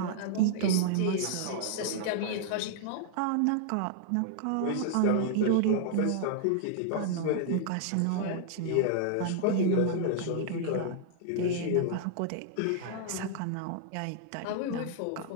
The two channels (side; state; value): both; different; correlation -0.01